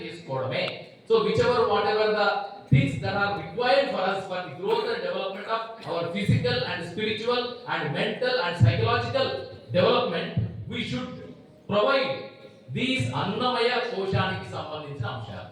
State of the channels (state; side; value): identical; both; correlation 1.00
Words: చేసుకోవడమే. So which ever what ever the things that are required for us for the growth and development of our physical and spiritual and mental and psychological development, we should provide these అన్నమయ కోశానికి సంబంధించిన అంశాలు.